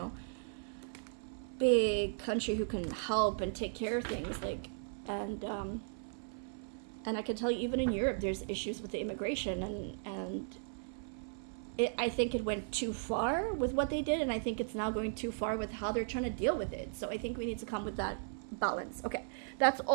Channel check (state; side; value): silent; left; 53 dB below the other